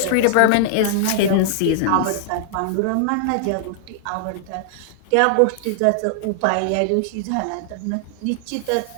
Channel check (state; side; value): different; both; correlation 0.00